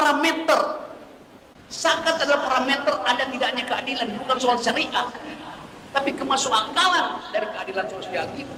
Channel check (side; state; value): both; identical; correlation 1.00